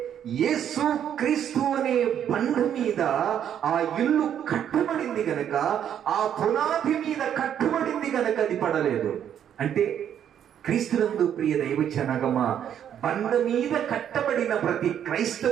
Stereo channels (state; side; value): quieter; left; 9.5 dB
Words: యేసు క్రీస్తు అనే బండ మీద ఆ ఇల్లు కట్టబడింది గనక, ఆ పునాది మీద కట్టబడింది గనక అది పడలేదు. అంటే క్రీస్తునందు ప్రియ దైవజనమా, బండ మీద కట్టబడిన ప్రతి